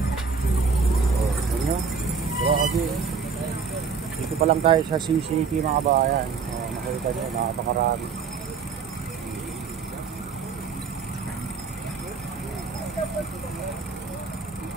Dito pa lang tayo sa CCT mga kabayan. Nakita nyo, napakarami.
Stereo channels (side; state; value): left; quieter; 5.5 dB